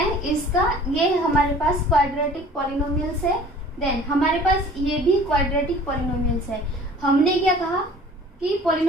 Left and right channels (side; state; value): both; normal; correlation 0.48